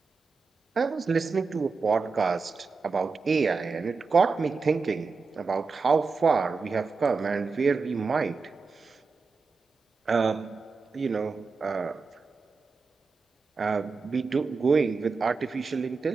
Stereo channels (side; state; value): left; quieter; 4.5 dB